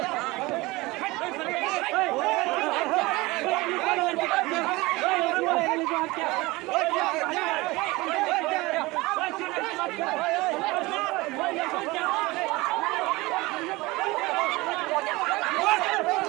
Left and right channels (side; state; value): left; quieter; 21.9 dB